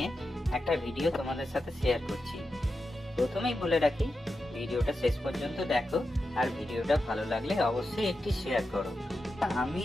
একটা ভিডিও তোমাদের সাথে শেয়ার করছি। প্রথমেই বলে রাখি, ভিডিওটা শেষ পর্যন্ত দেখো, আর ভিডিওটা ভালো লাগলে অবশ্যই একটি শেয়ার করো। আমি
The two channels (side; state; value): both; normal; correlation 0.89